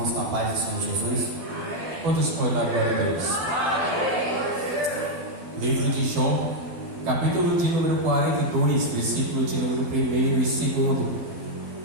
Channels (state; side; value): late; left; 12 ms